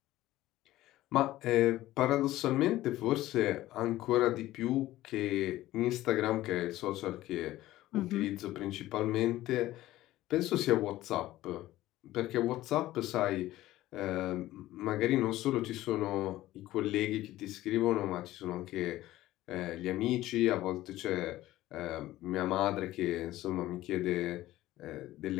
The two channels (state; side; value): quieter; right; 15.7 dB